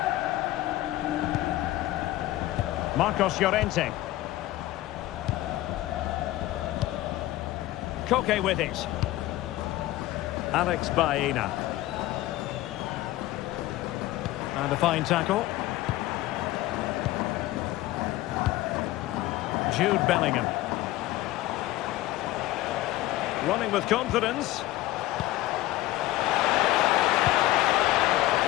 Marcos Llorente. Koke with it. Alex Baena. And a fine tackle. Jude Bellingham. Running with confidence.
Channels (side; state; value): right; quieter; 16.4 dB